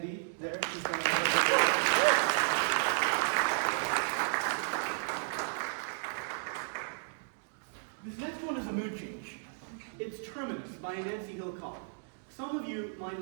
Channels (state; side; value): silent; left; digital silence